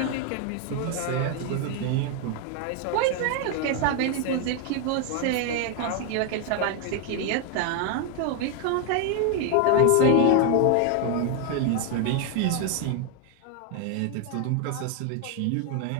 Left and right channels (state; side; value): different; both; correlation 0.01